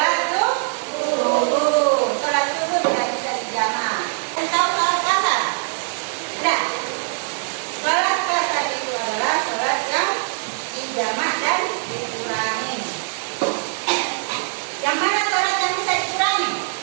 subuh. Sholat subuh tidak bisa dijamak. Dan tahu sholat kasar? Tidak. Sholat kasar itu adalah sholat yang dijamak dan dikurangi. Yang mana sholat yang bisa dikurangi?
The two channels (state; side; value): silent; left; 64 dB below the other